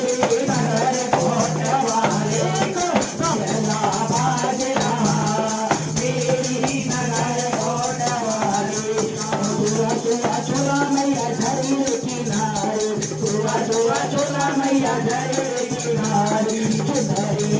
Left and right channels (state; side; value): identical; both; correlation 1.00